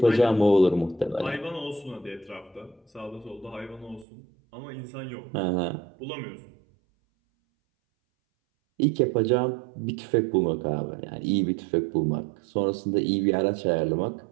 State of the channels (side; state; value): left; drops out; at 4.0 s